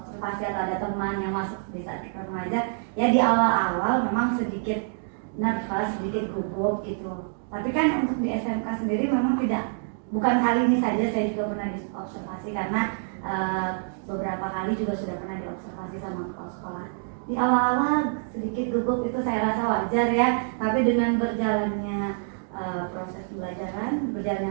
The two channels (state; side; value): silent; left; digital silence